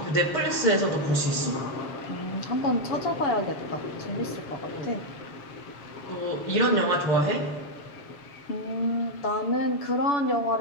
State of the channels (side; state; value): right; late; 7.0 ms